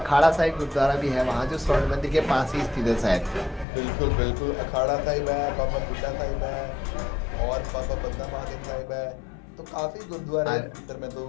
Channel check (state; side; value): drops out; right; at 3.7 s